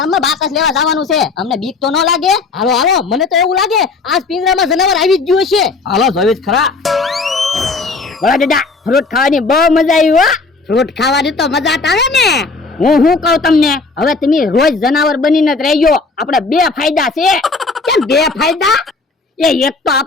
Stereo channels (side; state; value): right; quieter; 4.0 dB